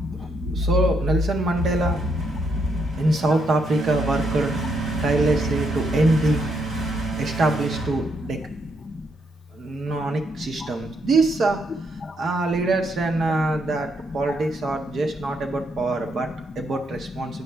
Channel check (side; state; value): both; normal; correlation 0.76